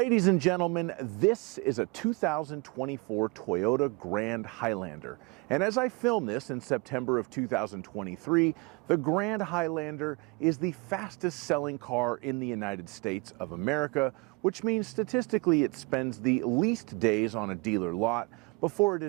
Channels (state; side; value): quieter; left; 28.2 dB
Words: and gentlemen, this is a 2024 Toyota Grand Highlander. And as I film this in September of 2023, the Grand Highlander is the fastest selling car in the United States of America, which means statistically it spends the least days on a dealer lot before it